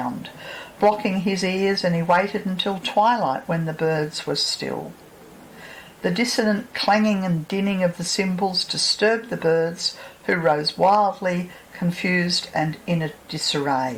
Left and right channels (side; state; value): both; identical; correlation 1.00